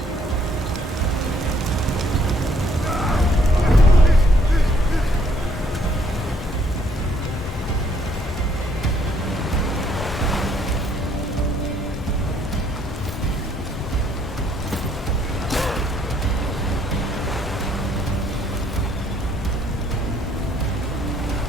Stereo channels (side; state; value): both; normal; correlation 0.67